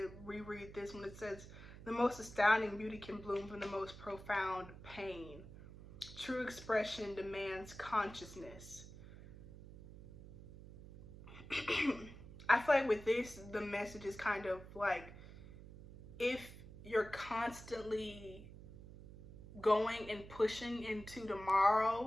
reread this when it says, the most astounding beauty can bloom from the most profound pain. True expression demands consciousness. I feel like with this, the message is kind of like, if you're constantly going and pushing into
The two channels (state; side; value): noise; right; hum, 15 dB below the sound